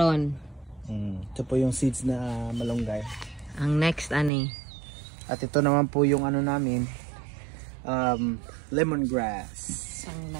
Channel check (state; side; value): drops out; left; at 4.3 s